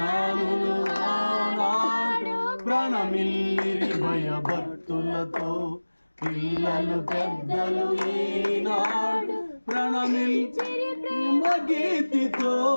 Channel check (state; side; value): inverted; both; correlation -1.00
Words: ఆనాడు ప్రణమిల్లిరి భయభక్తులతో పిల్లలు పెద్దలు ఈనాడు ప్రణమిల్లిరి ప్రేమ గీతితో